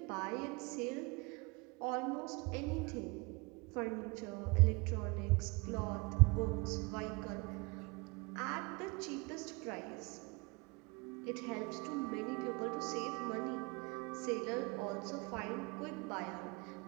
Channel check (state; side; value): quieter; left; 27.6 dB